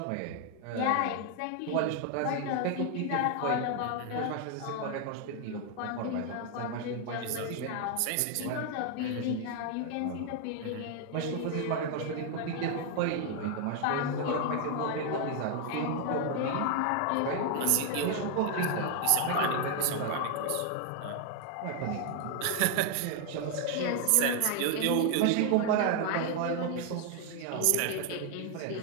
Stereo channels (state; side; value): different; both; correlation 0.00